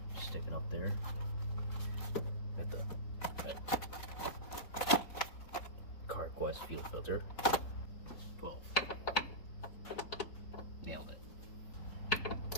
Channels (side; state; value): right; late; 4.2 ms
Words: Stick it up there at the CarQuest fuel filter. 12. Nailed it.